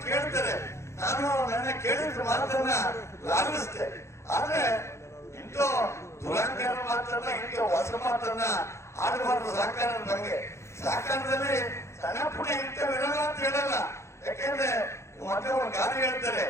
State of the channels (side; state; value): right; late; 0.13 ms